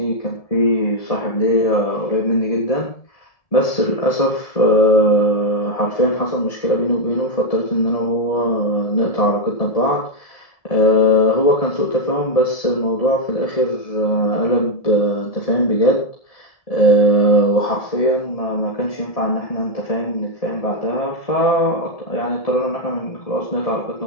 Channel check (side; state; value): right; late; 1.7 ms